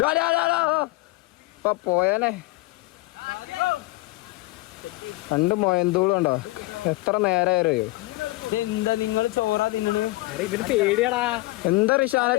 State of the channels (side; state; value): right; quieter; 20.8 dB